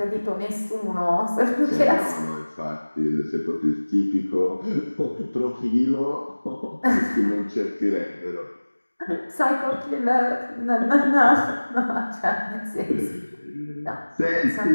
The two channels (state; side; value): inverted; both; correlation -1.00